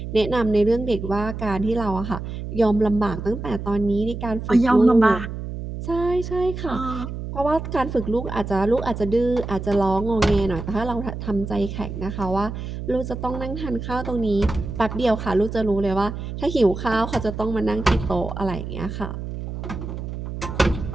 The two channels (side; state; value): right; noise; hum, 7 dB below the sound